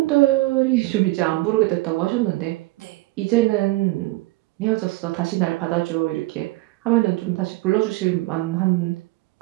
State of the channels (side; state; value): left; quieter; 20.5 dB